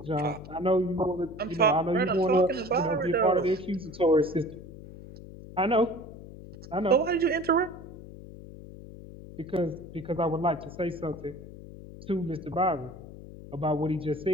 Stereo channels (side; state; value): left; noise; hum, 15 dB below the sound